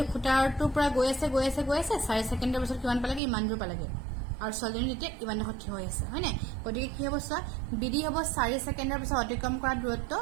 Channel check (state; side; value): drops out; left; at 3.2 s